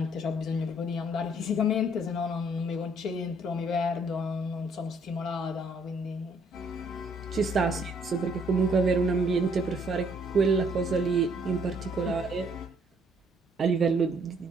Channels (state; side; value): normal; both; correlation 0.65